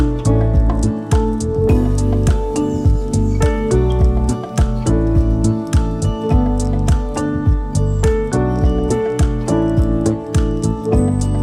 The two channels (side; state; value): both; identical; correlation 1.00